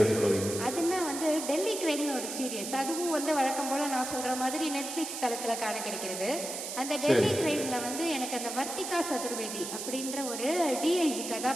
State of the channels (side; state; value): right; noise; hiss, 6 dB below the sound